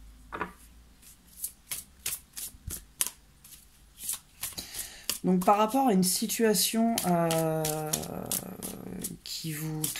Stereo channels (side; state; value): both; identical; correlation 1.00